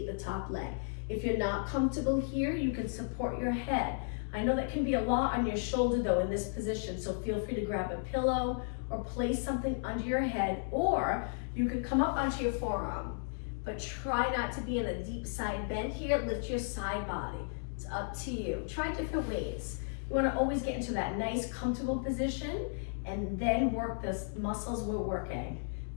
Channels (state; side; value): silent; right; digital silence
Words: the top leg. If you're not comfortable here, you can support your head. I know that can be a lot on your shoulder though in this position, so feel free to grab a pillow or place something under your head, or you can come up onto your forearm. But try not to be in a deep side bend here. Lift your side body. It's up to you. Try different ways. You want to always get into that nice comfortable position and then work the muscles we're working.